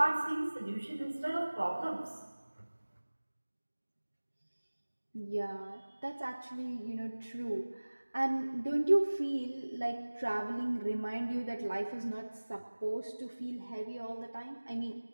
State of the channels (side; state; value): both; inverted; correlation -1.00